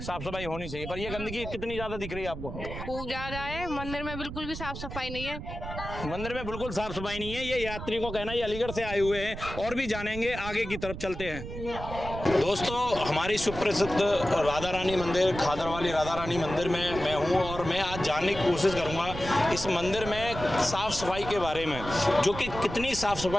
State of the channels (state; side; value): noise; right; rumble, 9 dB below the sound